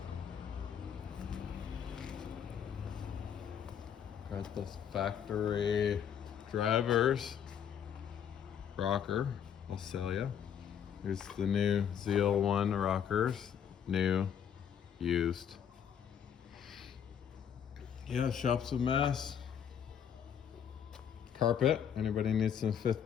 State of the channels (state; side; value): quieter; right; 8.4 dB